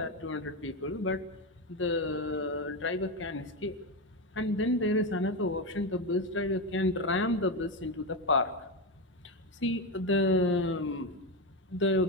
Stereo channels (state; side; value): normal; both; correlation 0.13